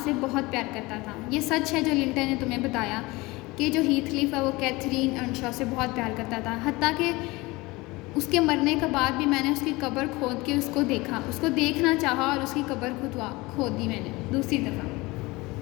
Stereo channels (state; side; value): quieter; right; 22.4 dB